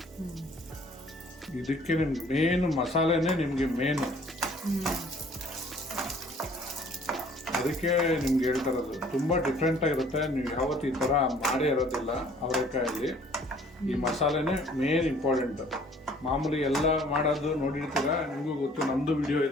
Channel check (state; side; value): normal; both; correlation 0.56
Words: ಇದಕ್ಕೆ ನಿಮ್ಗೆ ಮೇನ್ ಮಸಾಲೆನೇ ನಿಮ್ಗೆ ಮೇನು, ಅದಕ್ಕೆ ನಿಮ್ಗೆ ಹೇಳ್ತಾ ಇರೋದು. ತುಂಬಾ ಡಿಫ್ರೆಂಟ್ ಆಗಿರುತ್ತೆ, ನೀವು ಯಾವತ್ತು ಈ ತರ ಮಾಡೇ ಇರೋದಿಲ್ಲ ಅವರೆಕಾಯಲ್ಲಿ. ಈ ಮಸಾಲೆನೇ ಮೇನ್ ಇಂಪಾರ್ಟೆಂಟ್. ಮಾಮೂಲಿ ಎಲ್ಲ ಮಾಡೋದು ನೋಡಿರ್ತೀರ, ನಿಮಗೂ ಗೊತ್ತು, ನಮ್ದು ವಿಡಿಯೋ